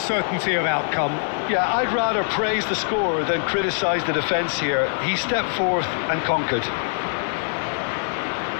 of outcome. Yeah, I'd rather praise the scorer than criticise the defence here. He stepped forth and conquered.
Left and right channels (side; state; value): right; silent; 63 dB below the other